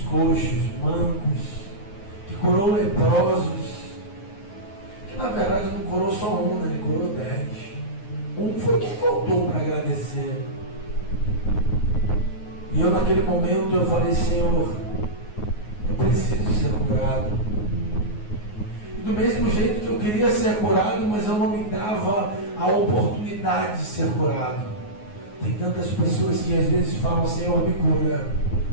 coxos, mancos, que curou leprosos, que na verdade não curou só um, né? Ele curou 10. Um foi quem voltou para agradecer. E eu naquele momento eu falei: Senhor, eu preciso ser curado. E do mesmo jeito que eu queria ser curado, mas eu não me dava a oportunidade de ser curado. Tem tantas pessoas que às vezes falam: Senhor, me cura,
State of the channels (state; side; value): late; right; 9.5 ms